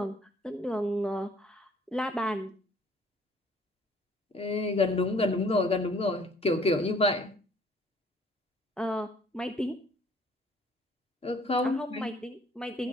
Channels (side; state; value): both; normal; correlation 0.58